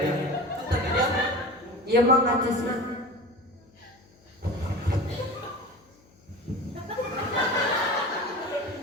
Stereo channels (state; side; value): noise; left; hum, 29 dB below the sound